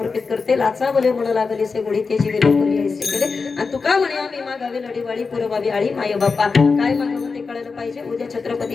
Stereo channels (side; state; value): right; quieter; 4.7 dB